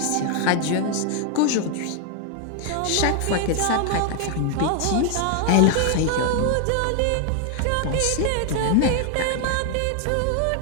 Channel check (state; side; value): different; both; correlation 0.00